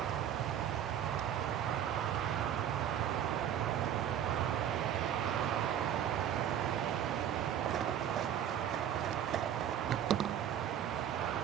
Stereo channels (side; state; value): left; quieter; 9.9 dB